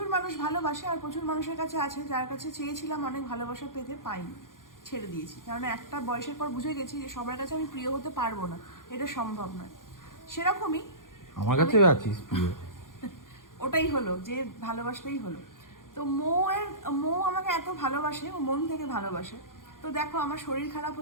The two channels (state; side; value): late; right; 0.89 ms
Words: মানুষ ভালোবাসে, আর প্রচুর মানুষের কাছে আছে যার কাছে চেয়েছিলাম অনেক ভালোবাসা পেতে পাইনি, ছেড়ে দিয়েছি। কারণ একটা বয়সের পর বুঝে গেছি যে সবার কাছে আমি প্রিয় হতে পারবো না, এটা সম্ভব নয়। সেরকমই আমার কাছে আছিস প্রিয়। ওটাই হলো যে ভালোবাসলেই হলো। তো মৌ আমাকে এত ভালোবাসে, ও মন থেকে ভালোবাসে। তো দেখো আমার শরীর খারাপ